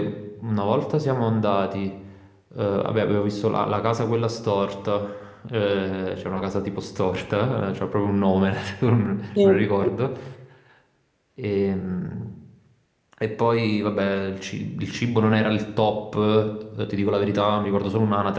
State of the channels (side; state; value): both; identical; correlation 1.00